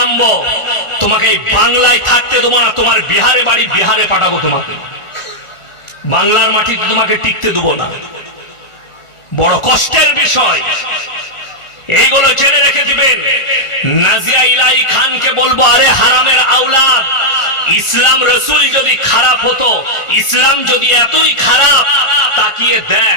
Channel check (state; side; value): late; right; 1.4 ms